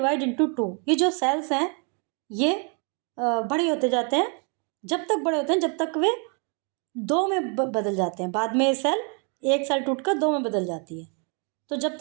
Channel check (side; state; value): left; quieter; 37.3 dB